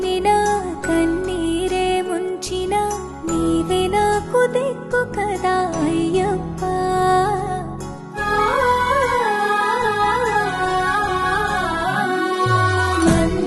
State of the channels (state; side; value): identical; both; correlation 1.00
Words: కన్నీరే ముంచినా నీవే నాకు దిక్కు కదా అయ్యప్ప